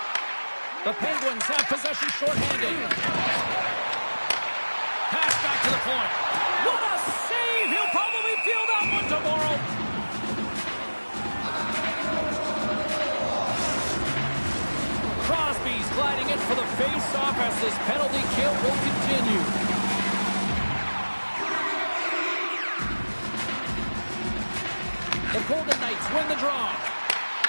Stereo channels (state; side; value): inverted; both; correlation -1.00